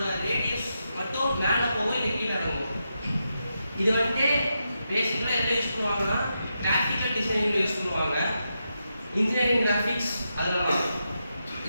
ரேடியஸ் மட்டும் மேல போகும் இல்ல கீழ இறங்கும். இது வந்து பேசிக்கலா எங்க யூஸ் பண்ணுவாங்கன்னா கிராஃபிக்கல் டிசைனிங்ல யூஸ் பண்ணுவாங்க. இன்ஜினியரிங் கிராஃபிக்ஸ் அதெல்லாம்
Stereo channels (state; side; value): inverted; both; correlation -0.86